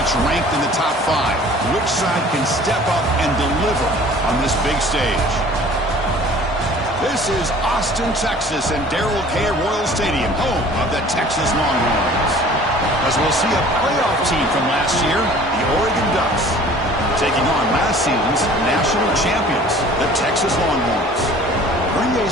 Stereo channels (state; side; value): normal; both; correlation 0.48